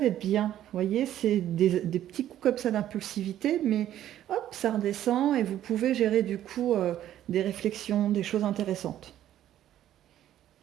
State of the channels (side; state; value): left; quieter; 12.0 dB